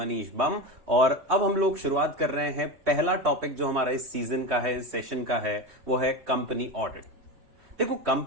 बम। और अब हम लोग शुरुआत कर रहे हैं। पहला टॉपिक जो हमारा इस सीजन का है, इस सेशन का है, वो है कंपनी ऑडिट। देखो,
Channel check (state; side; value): late; left; 3.2 ms